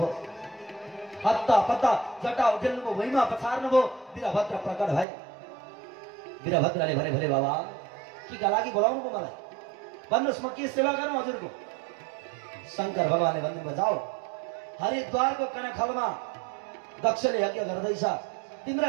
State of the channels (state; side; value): drops out; left; at 5.1 s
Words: हत्ता पत्ता जटा उठेल्नुभयो, भुइँमा पछार्नुभयो। वीरभद्र प्रकट भए। वीरभद्रले भने, भोले बाबा केका लागि बोलाउनु भयो मलाई? भन्नुहोस्, म के सेवा गरौँ हजुरको? शङ्कर भगवानले भन्नुभयो, जाऊ हरिद्वारको कनखलमा दक्षले यज्ञ गर्दैछ,